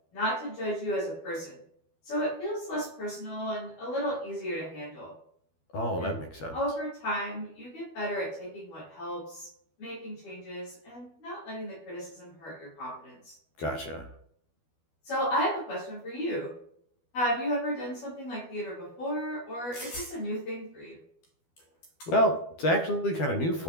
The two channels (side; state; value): right; late; 12 ms